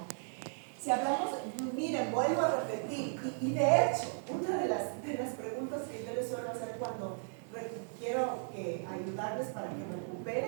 Si hablamos, miren, vuelvo a repetir, y de hecho, una de las preguntas que yo les suelo hacer cuando quiero ayudarles para que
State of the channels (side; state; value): left; silent; digital silence